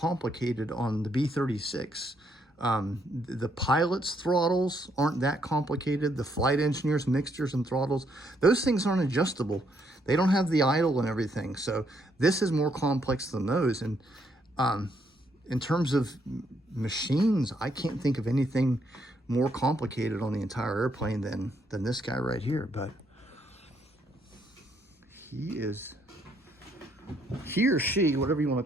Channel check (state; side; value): normal; both; correlation 0.73